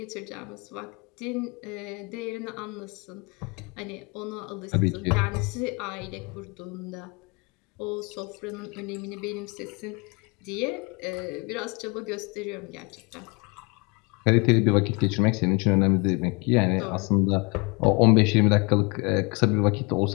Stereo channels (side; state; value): right; quieter; 29.1 dB